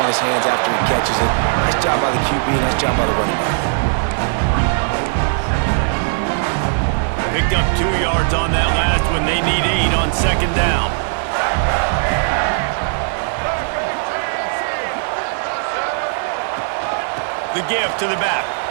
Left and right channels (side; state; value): left; silent; 67 dB below the other